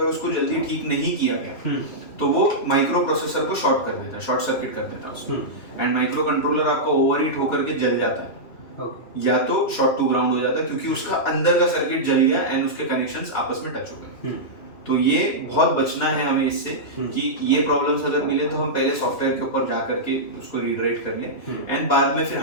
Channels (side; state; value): right; late; 2.7 ms